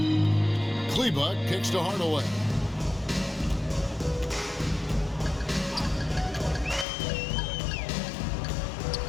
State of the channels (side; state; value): right; drops out; at 6.9 s